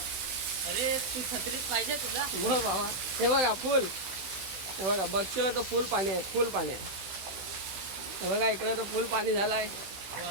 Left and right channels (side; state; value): left; late; 16 ms